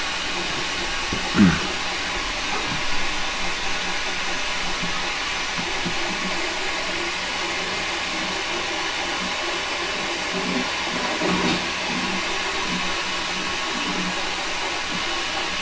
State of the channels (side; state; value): both; identical; correlation 1.00